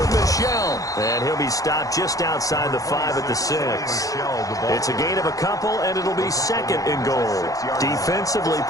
Michel. And he'll be stopped just outside the 5 at the 6. It's a gain of a couple, and it'll be 2nd and goal. Defensively,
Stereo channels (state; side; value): late; right; 0.17 ms